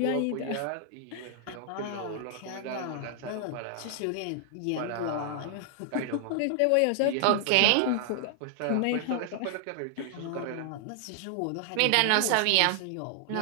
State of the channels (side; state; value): both; different; correlation 0.00